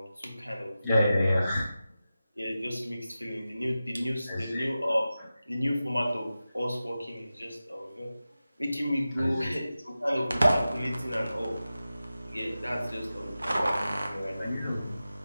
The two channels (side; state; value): both; inverted; correlation -0.94